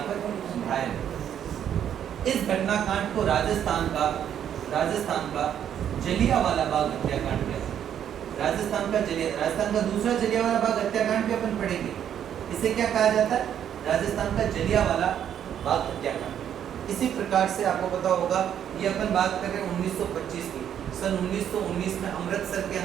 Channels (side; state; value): left; quieter; 9.5 dB